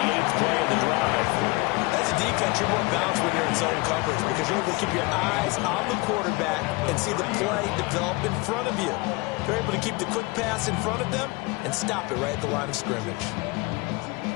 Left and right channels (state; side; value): quieter; right; 25.0 dB